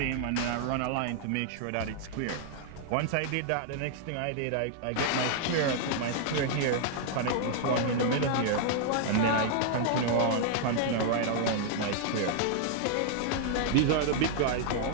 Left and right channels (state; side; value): different; both; correlation -0.01